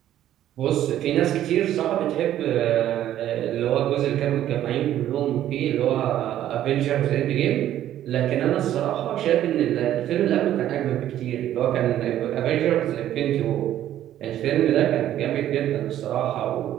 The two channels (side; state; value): left; quieter; 12.1 dB